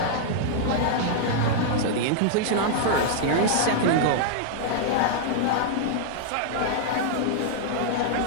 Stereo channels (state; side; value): different; both; correlation -0.01